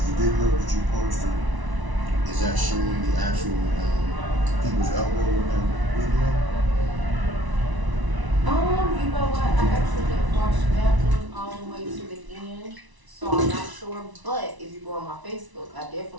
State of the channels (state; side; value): late; left; 1.0 ms